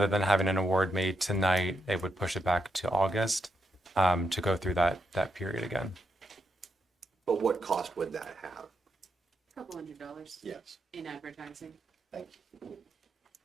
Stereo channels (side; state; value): both; normal; correlation 0.81